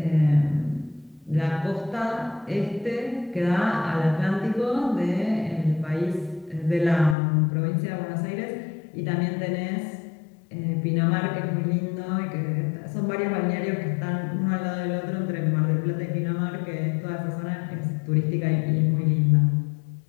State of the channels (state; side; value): drops out; right; at 7.2 s